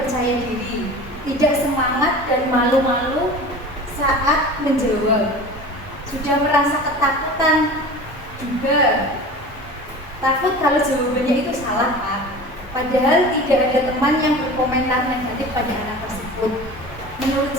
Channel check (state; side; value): normal; both; correlation 0.37